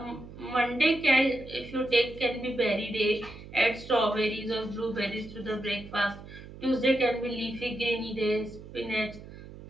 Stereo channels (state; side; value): noise; right; hum, 15 dB below the sound